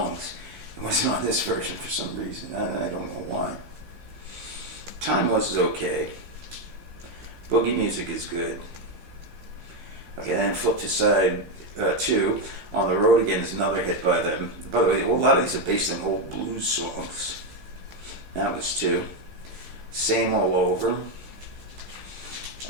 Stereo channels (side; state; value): left; late; 15 ms